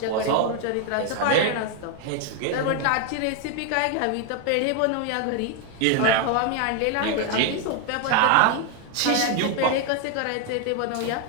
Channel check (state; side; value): different; both; correlation 0.01